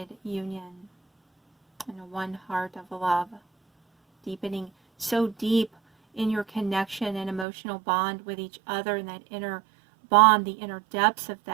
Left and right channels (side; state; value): left; drops out; at 7.5 s